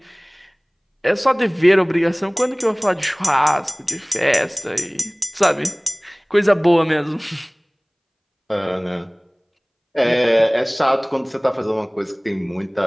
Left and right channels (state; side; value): identical; both; correlation 1.00